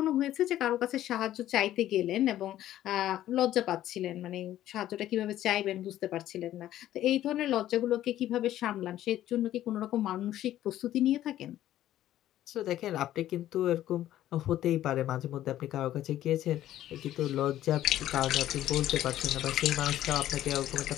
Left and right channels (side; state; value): right; quieter; 13.0 dB